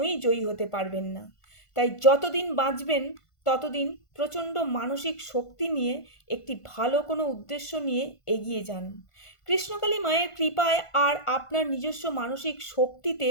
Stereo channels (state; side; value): late; right; 1.5 ms